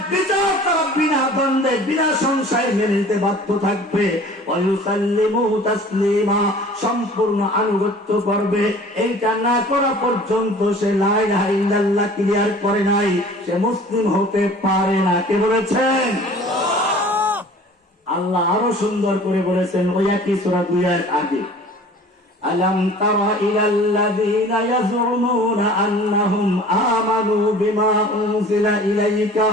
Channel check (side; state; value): both; normal; correlation 0.46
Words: বিচার তারা বিনা দ্বন্দ্বে বিনা সংশয়ে মেনে নিতে বাধ্য থাকবে। ওয়ায়ুসাল্লিমু তাসলিমা, সম্পূর্ণ আনুগত্য করবে। এইটা না করা পর্যন্ত সে লা ইলাহা ইল্লাল্লাহ ক্লিয়ার করে নাই, সে মুসলিম হতে পারে না। কে বলেছেন? আল্লাহ আরো সুন্দর করে বলেছেন ওই একই সূরা 2 আয়াত আগে, আলাম তারা ইলাল্লাযীনা ইয়াজউমুনা আন্নাহুম আমানু বিমা উনজিলা ইলাইকা